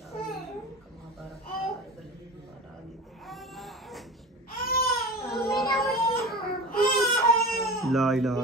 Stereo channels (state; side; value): normal; both; correlation 0.32